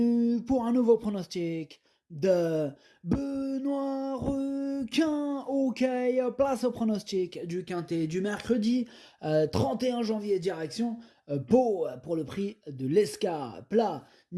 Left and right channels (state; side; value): identical; both; correlation 1.00